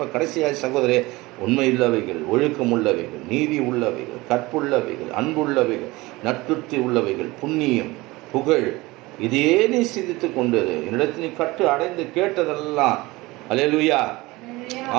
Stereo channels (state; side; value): quieter; left; 21.3 dB